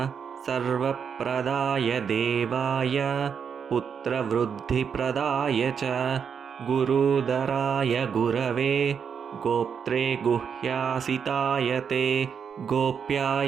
सर्वप्रदाय देवाय पुत्रवृद्धिप्रदाय च गुरुदराय गुरवे गोप्त्रे गुह्यासिताय ते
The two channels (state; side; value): quieter; left; 7.0 dB